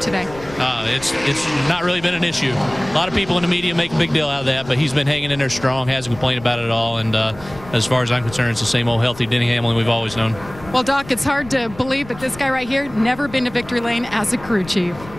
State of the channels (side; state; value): left; noise; rumble, 17 dB below the sound